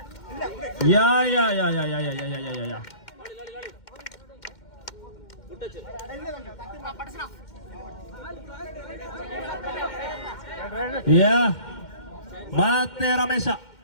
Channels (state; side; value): late; right; 2.1 ms